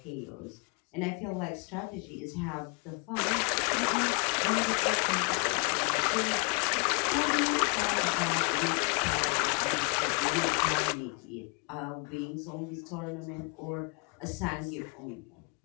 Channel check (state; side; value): quieter; right; 35.9 dB